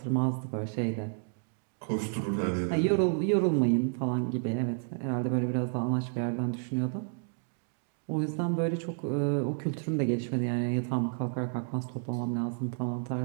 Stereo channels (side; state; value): left; silent; 57 dB below the other